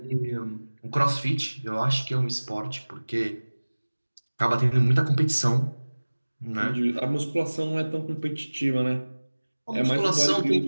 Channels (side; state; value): both; inverted; correlation -1.00